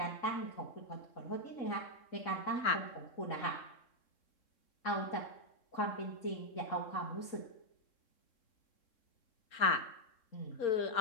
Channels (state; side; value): late; right; 3.7 ms